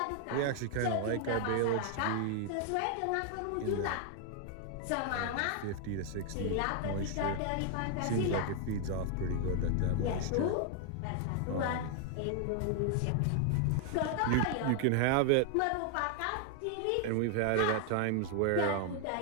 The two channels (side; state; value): both; different; correlation 0.00